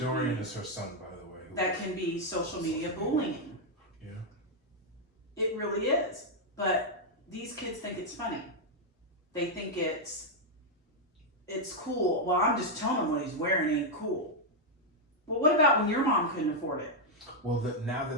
is her son, by the way. That can be social media bullying. Yeah. It really is. But these kids think it's funny. They think it's cool. Well, I'm just telling him what he's wearing ain't cool. Well, what about when your mom couldn't afford it? Well, now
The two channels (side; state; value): both; normal; correlation -0.01